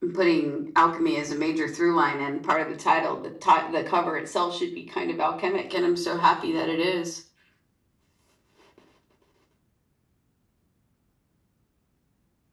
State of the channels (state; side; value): identical; both; correlation 1.00